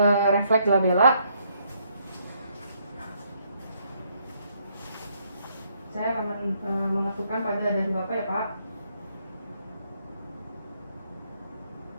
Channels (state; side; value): inverted; both; correlation -0.71